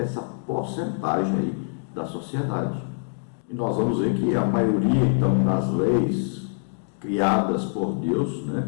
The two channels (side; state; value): right; silent; digital silence